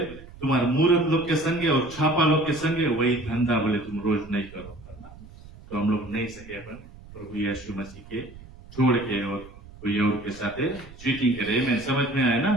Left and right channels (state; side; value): noise; right; rumble, 19 dB below the sound